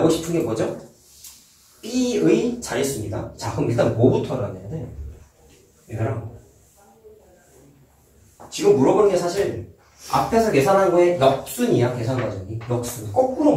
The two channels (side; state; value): both; identical; correlation 1.00